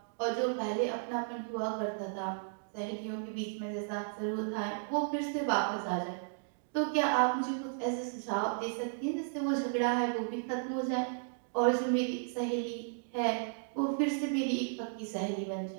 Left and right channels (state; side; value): silent; left; digital silence